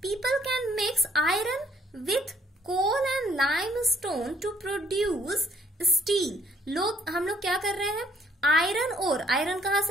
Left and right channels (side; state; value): both; normal; correlation 0.65